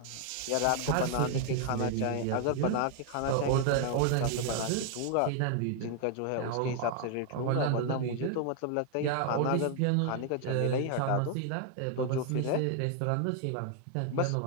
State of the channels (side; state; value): both; different; correlation 0.00